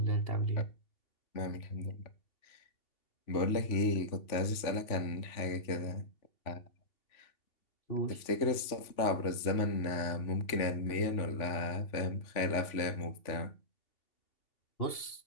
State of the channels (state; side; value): late; right; 3.4 ms